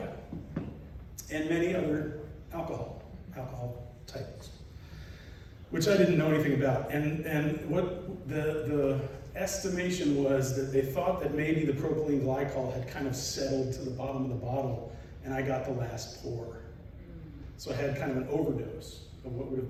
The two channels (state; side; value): identical; both; correlation 1.00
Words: and many other alcohol types, which I didn't know anything about. And what the estimation was that they thought that maybe the propylene glycol had kind of settled to the bottom of the bottle, and I got the last pour. So I had kind of an overdose of what would have